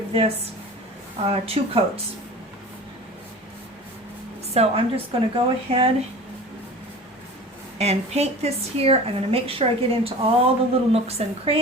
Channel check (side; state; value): both; normal; correlation 0.38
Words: this 2 coats. So I'm just going to go ahead and paint this here. I'm going to make sure I get into all the little nooks and